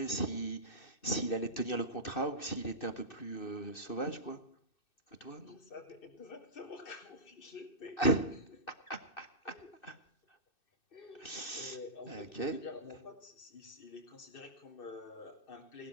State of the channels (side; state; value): right; late; 2.6 ms